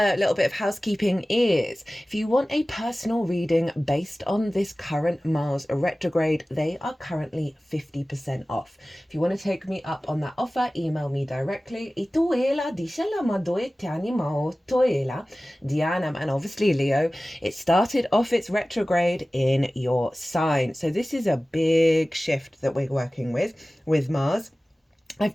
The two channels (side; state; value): both; normal; correlation 0.97